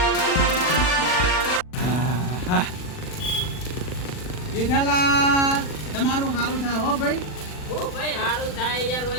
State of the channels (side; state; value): right; late; 40 ms